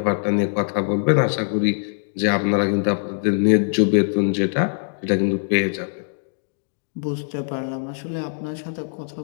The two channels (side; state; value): right; silent; digital silence